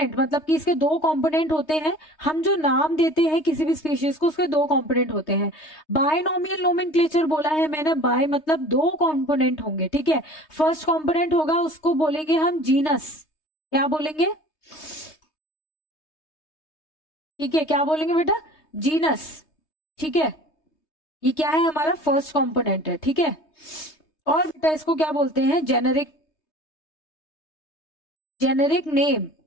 मतलब कि इसके 2 कंपोनेंट होते हैं, हम जो नाम देते हैं किसी भी स्पीशीज को उसके 2 कंपोनेंट होते हैं। बायनोमियल नोमेनक्लेचर बोला है मैंने, बाय मतलब 2 कंपोनेंट होंगे, ठीक है। फर्स्ट कंपोनेंट होगा उसको बोलेंगे हम जीनस, क्या बोलेंगे, ठीक है, क्या बोलेंगे बेटा, जीनस, ठीक है, ये क्या है हमारा फर्स्ट कंपोनेंट है, ठीक है। और बेटा इसको क्या बोलते हैं, जेनेरिक नेम,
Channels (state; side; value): late; right; 3.2 ms